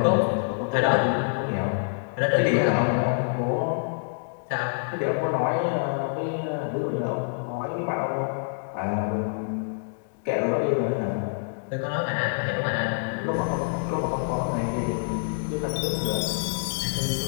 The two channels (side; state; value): right; silent; digital silence